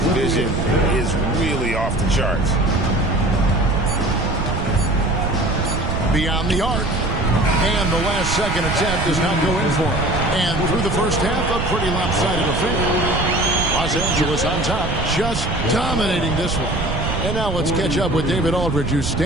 vision is really off the charts. Beyond the arc. And the last second attempt does not go in for him. And through the first half, a pretty lopsided affair. Los Angeles on top, just dominating this one. And now let's catch up with David Aldridge, who's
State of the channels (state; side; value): noise; right; rumble, 3 dB below the sound